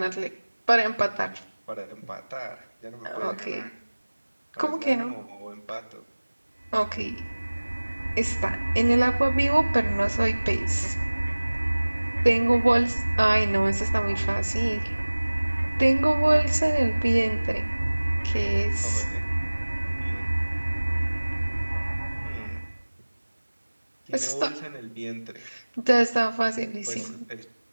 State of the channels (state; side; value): inverted; both; correlation -1.00